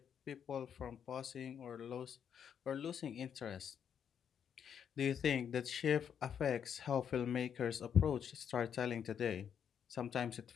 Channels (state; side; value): quieter; right; 8.1 dB